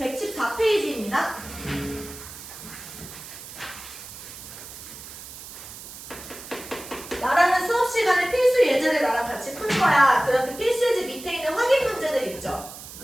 나라는 수업 시간에 필수 예제를 나랑 같이 풀 거야. 그럼 그 필수 예제 밑에 있는 확인 문제들 있죠?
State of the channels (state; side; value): noise; right; hiss, 14 dB below the sound